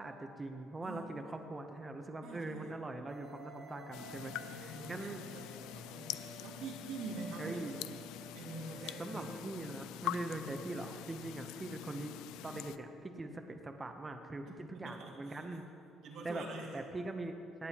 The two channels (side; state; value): both; normal; correlation 0.69